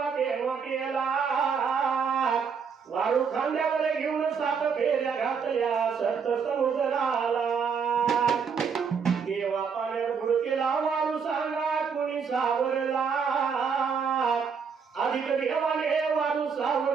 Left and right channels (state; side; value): quieter; left; 6.2 dB